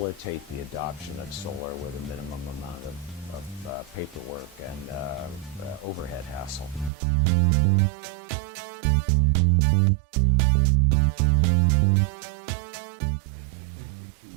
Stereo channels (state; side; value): drops out; left; at 6.9 s